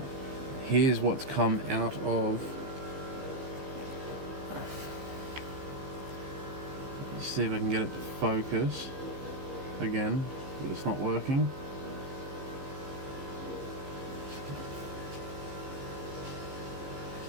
here's what's come out of, let's see if I can get it to focus again, but it's not working.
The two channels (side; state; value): left; late; 15 ms